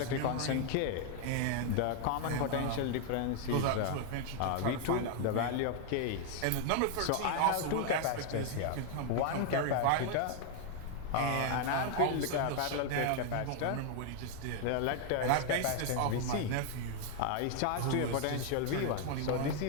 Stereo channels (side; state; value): both; different; correlation 0.00